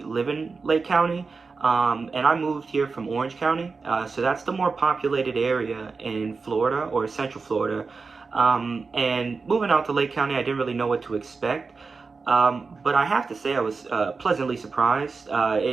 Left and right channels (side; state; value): left; quieter; 4.5 dB